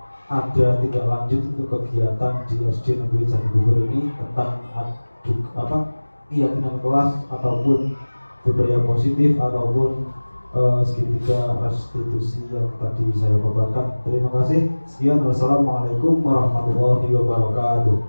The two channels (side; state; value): both; inverted; correlation -1.00